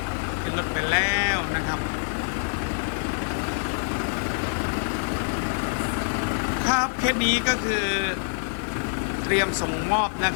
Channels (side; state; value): right; silent; digital silence